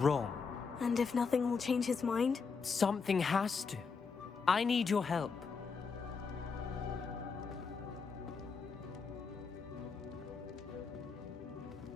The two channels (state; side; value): quieter; right; 5.3 dB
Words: And if nothing will change his mind? Something has to. I need your help.